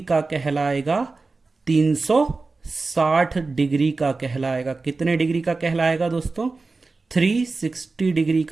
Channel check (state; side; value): quieter; left; 3.8 dB